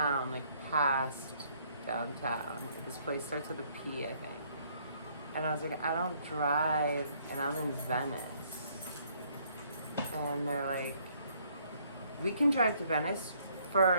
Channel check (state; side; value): inverted; both; correlation -0.66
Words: like past downtown. This place starts with a P, I think. And I was like, I don't drive, and I'm in Venice. And they're like, we can drive to Venice